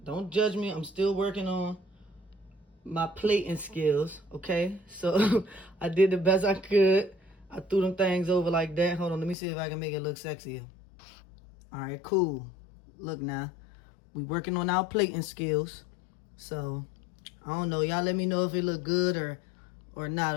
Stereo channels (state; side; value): drops out; right; at 9.3 s